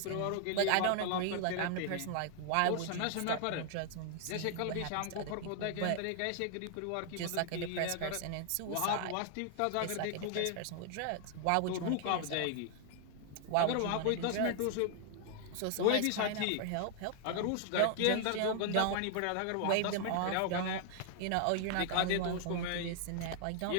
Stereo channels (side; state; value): both; different; correlation 0.00